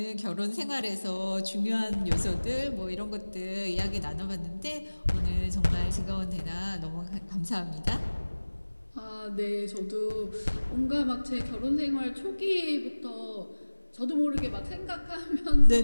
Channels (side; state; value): both; inverted; correlation -1.00